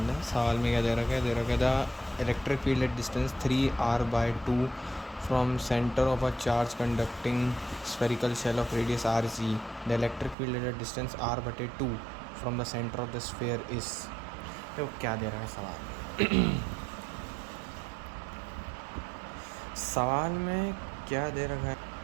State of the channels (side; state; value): left; drops out; at 10.4 s